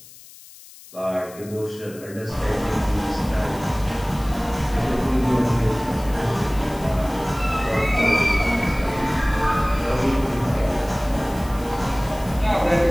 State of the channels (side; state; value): left; noise; hiss, 20 dB below the sound